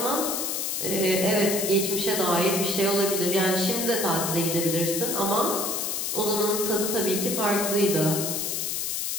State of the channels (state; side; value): noise; left; hiss, 1 dB below the sound